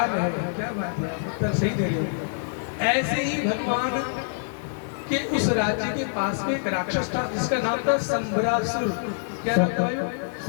है, क्या बात है, उत्तर सही दे रहे हो। ऐसे ही भगवान के उस राज्य के पास में एक राक्षस था जिसका नाम था शंभरासुर। क्या नाम था?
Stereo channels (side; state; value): right; silent; 57 dB below the other